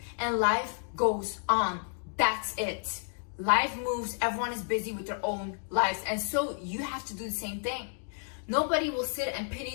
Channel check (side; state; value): right; silent; 57 dB below the other